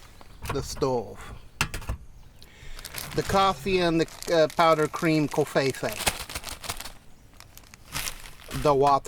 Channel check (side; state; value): both; identical; correlation 1.00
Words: The stove. The coffee and the powdered cream covfefe. The